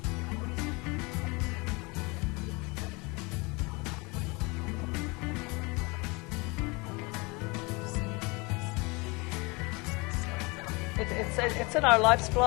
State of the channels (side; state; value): right; quieter; 27.0 dB